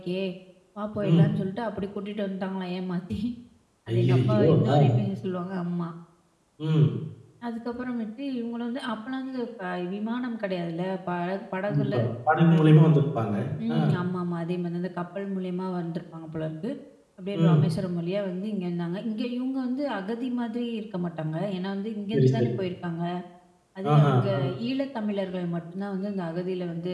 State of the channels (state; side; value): identical; both; correlation 1.00